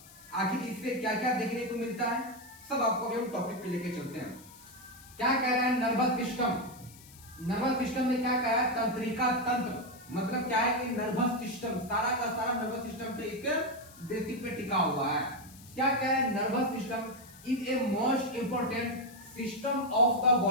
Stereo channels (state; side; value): noise; left; hiss, 21 dB below the sound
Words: आखिर इससे क्या क्या देखने को मिलता है सब आपको हम टॉपिक पे लेके चलते हैं। क्या कह रहा है नर्वस सिस्टम। नर्वस सिस्टम में क्या कह रहा है, तंत्रिका तंत्र। मतलब क्या है कि नर्वस सिस्टम सारा का सारा नर्वस सिस्टम पे एक बेसिक पे टिका हुआ है। क्या कह रहा है, nervous system is a most important system of the